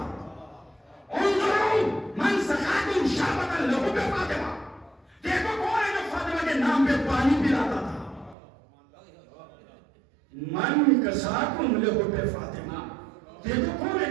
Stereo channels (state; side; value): drops out; left; at 8.3 s